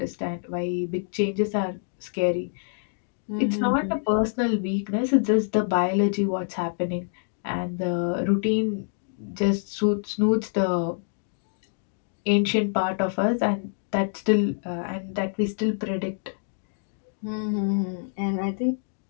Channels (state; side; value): silent; right; digital silence